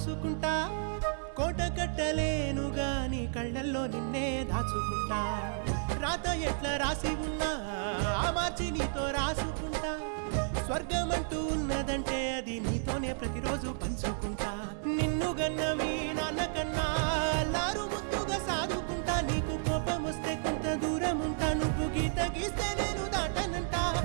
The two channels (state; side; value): silent; left; 56 dB below the other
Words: కోట కట్టలేను గాని కళ్ళల్లో నిన్నే దాచుకుంటా. రాత ఎట్లా రాసి ఉన్నా ఆ మార్చి నీతో రాసుకుంటా. స్వర్గమంటూ ఉన్నదంటే అది నీతోనే ప్రతిరోజు పంచుకుంటా. నిన్ను గన్న మీ నాన్న కన్నా అల్లారు ముద్దుగా సాదుకుంటా. నీకు కోపం వస్తే కొంత దూరం ఉంటా, నువ్వు గీత గీస్తే నేను దాటనంటా.